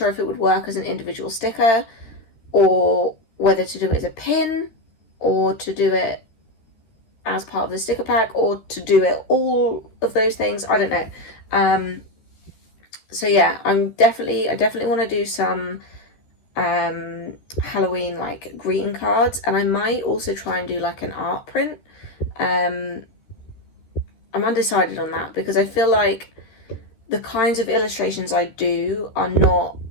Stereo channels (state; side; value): late; right; 13 ms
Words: if it would work as an individual sticker, or whether to do it as a pin, or to do it as part of the sticker pack, or to do it all of those things. I don't know. So yeah, I definitely want to do some Halloween like greeting cards, and I might also try and do like an art print. I'm undecided on that, because I feel like the kinds of illustrations I do are not